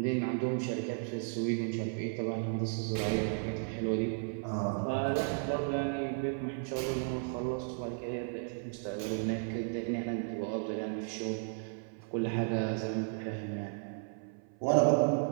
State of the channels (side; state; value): left; silent; 55 dB below the other